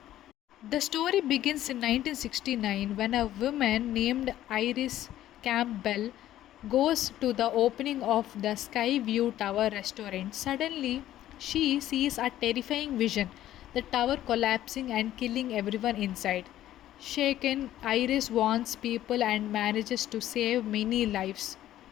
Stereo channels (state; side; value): quieter; right; 13.1 dB